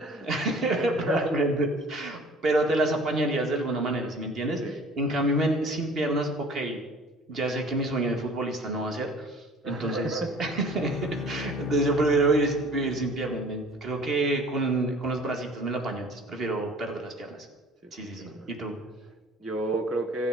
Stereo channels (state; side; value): normal; both; correlation 0.49